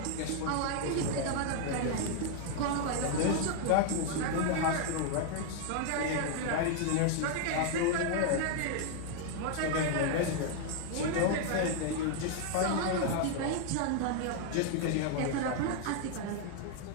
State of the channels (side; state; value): both; different; correlation 0.00